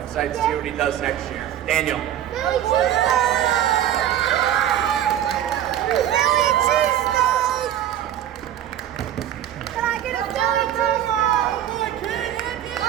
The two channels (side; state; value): left; quieter; 11.3 dB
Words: excited to see what he does next year. Daniel. Can I get a Philly cheesesteak?